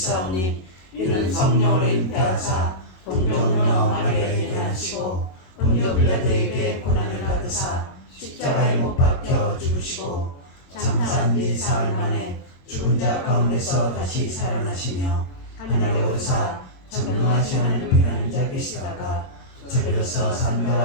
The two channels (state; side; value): late; right; 22 ms